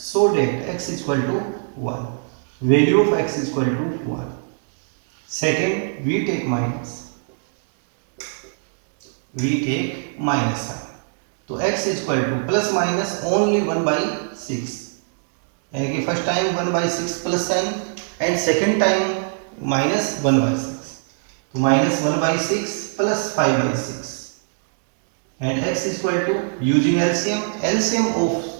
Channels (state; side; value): silent; left; digital silence